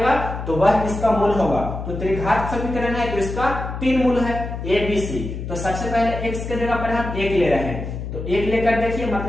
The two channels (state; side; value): noise; left; hum, 7 dB below the sound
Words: तो वह इसका मूल होगा। तो त्रिघात समीकरण है तो इसका 3 मूल है ए बी सी। तो सबसे पहले x के जगह पर हम 1 ले रहे हैं, तो 1 लेकर देखिए,